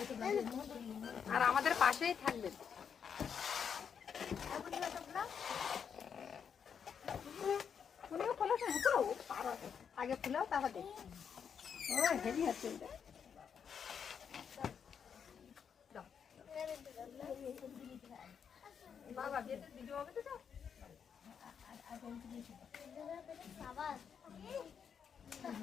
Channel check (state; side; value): quieter; right; 7.2 dB